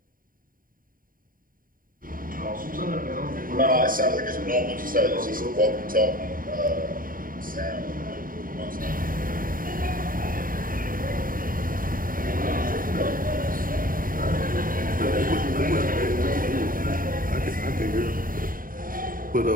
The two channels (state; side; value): late; left; 0.41 ms